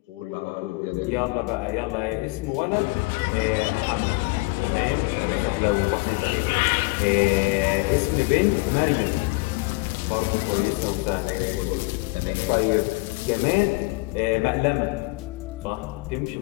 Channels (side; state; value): right; quieter; 25.5 dB